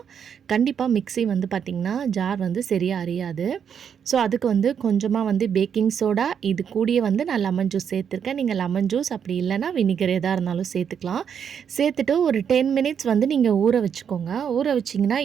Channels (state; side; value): quieter; left; 7.8 dB